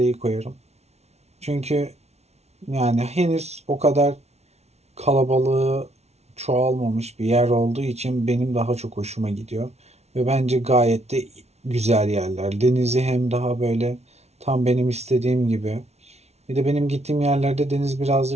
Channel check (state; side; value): late; left; 0.31 ms